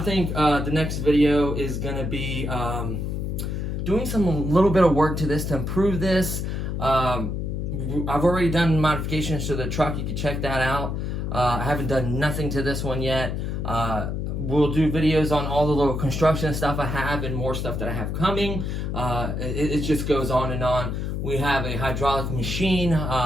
the next video is going to be doing a little bit of work to this to improve this. I've already done modifications to the truck. You can check that out. I haven't done nothing to this one yet. We'll do videos on all the little construction stuff I have and more stuff that I have coming. It just goes on and on. We have a hydraulic machine.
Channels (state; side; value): noise; left; hum, 2 dB below the sound